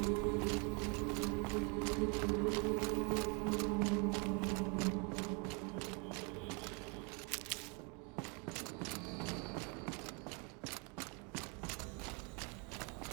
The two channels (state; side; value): quieter; left; 33.9 dB